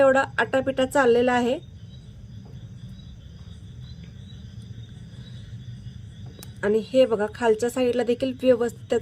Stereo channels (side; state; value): both; identical; correlation 1.00